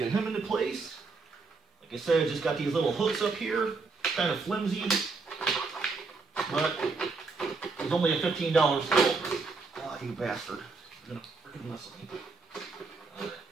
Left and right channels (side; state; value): left; quieter; 4.2 dB